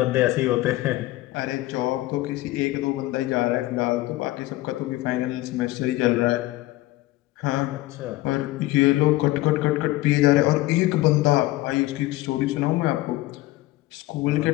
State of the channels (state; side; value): quieter; right; 17.9 dB